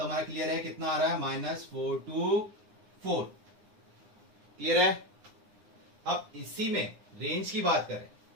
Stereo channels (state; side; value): late; left; 9.7 ms